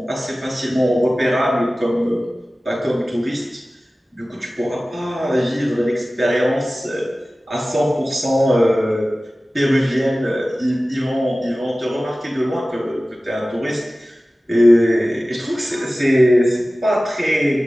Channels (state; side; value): normal; both; correlation 0.97